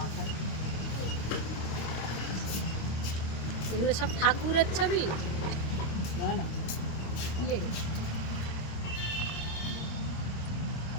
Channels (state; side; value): late; right; 26 ms